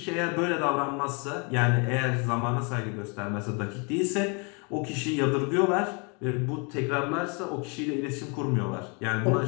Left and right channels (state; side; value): quieter; right; 33.9 dB